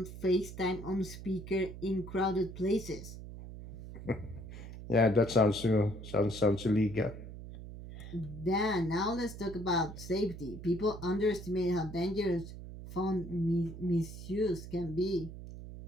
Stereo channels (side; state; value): right; noise; hum, 12 dB below the sound